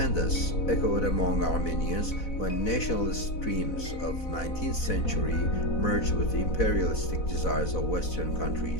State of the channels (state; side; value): late; right; 4.0 ms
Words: echoed among Armenians when nationalist streams of 19th century merged with the imperialistic desires of Western